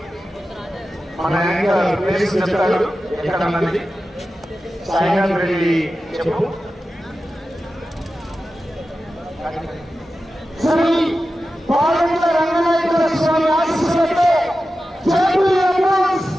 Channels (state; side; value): normal; both; correlation 0.93